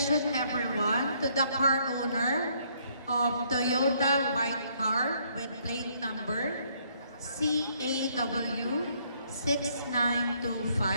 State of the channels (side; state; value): both; inverted; correlation -0.68